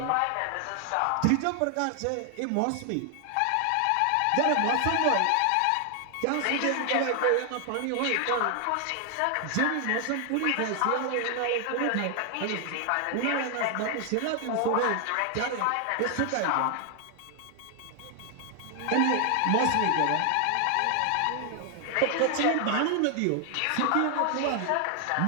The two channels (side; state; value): both; different; correlation 0.00